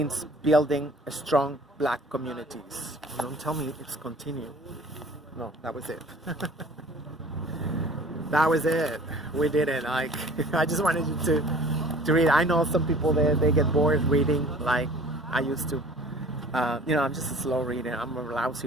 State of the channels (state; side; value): normal; both; correlation 0.48